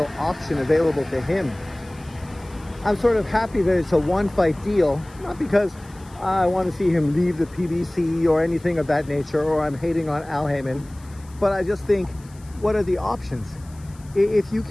option available to him. I'm sort of happy that it's a 1-fight deal, not because I want to see him leave the PBC or anything of that nature, or I'm hating on Al Heyman, but I just think, what are the options? If you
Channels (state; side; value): noise; left; hiss, 26 dB below the sound